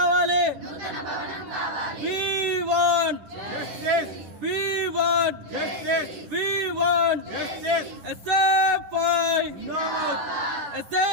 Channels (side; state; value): left; late; 10 ms